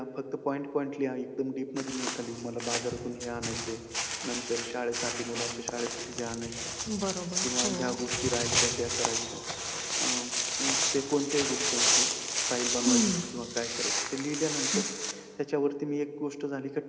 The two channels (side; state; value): both; identical; correlation 1.00